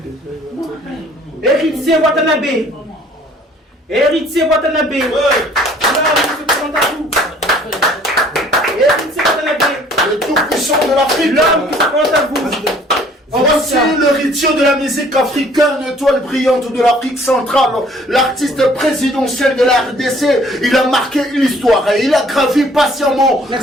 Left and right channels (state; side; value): normal; both; correlation 0.56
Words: Héritier Watanabe. Héritier Watanabe. Héritier Watanabe. Le tout-puissant de l'Afrique. L'homme qui se présente à vous. Voici l'héritier de la musique africaine, l'étoile brillante de l'Afrique centrale, l'artiste présidentiel de la RDC. Il a marqué l'histoire et il a gravi patiemment